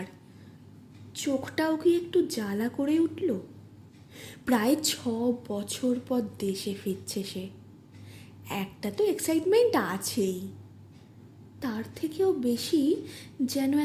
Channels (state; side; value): identical; both; correlation 1.00